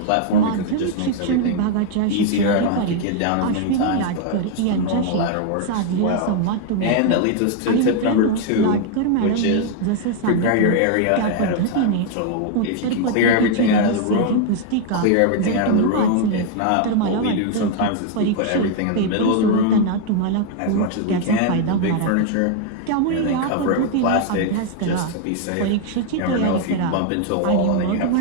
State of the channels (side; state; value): both; different; correlation 0.00